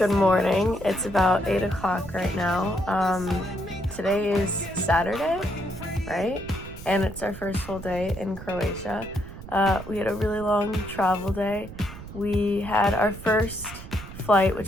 morning. It's about 8 o'clock right now. Today is Saturday, right? And it's our first full day in Croatia. We had a really long travel day. We had our first flight,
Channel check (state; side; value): noise; right; rumble, 13 dB below the sound